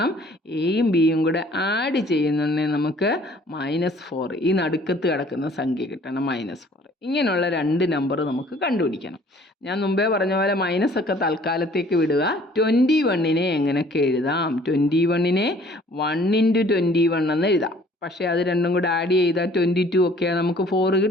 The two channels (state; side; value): normal; both; correlation 0.55